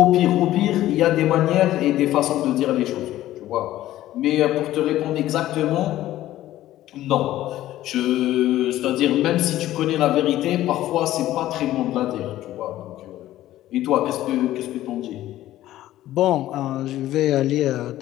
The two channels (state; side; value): quieter; right; 14.3 dB